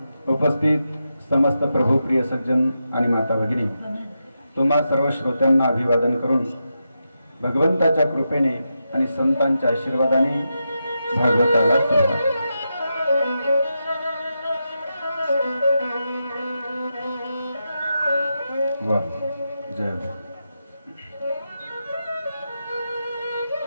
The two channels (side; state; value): both; inverted; correlation -0.87